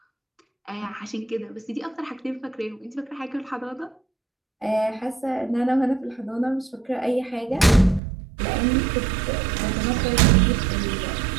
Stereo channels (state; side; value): drops out; left; at 8.0 s